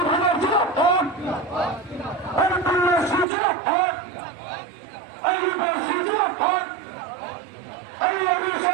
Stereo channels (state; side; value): drops out; left; at 3.2 s